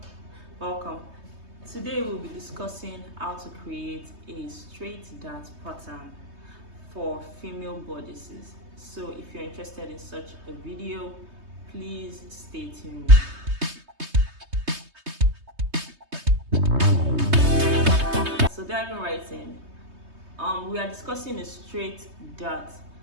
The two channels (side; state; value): left; late; 3.2 ms